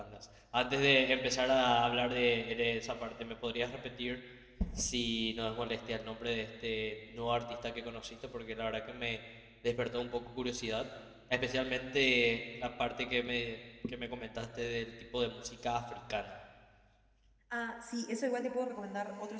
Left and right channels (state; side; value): identical; both; correlation 1.00